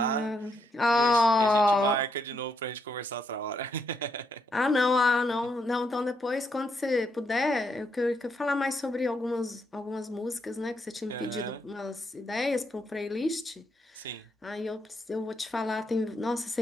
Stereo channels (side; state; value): both; normal; correlation 0.77